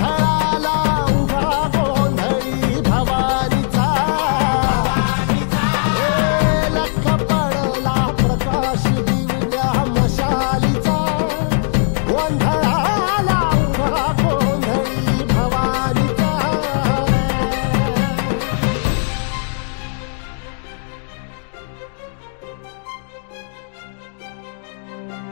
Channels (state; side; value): silent; right; digital silence